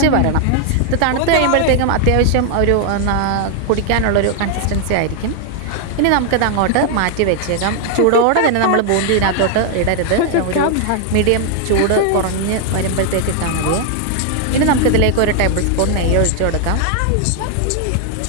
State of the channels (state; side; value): different; both; correlation 0.00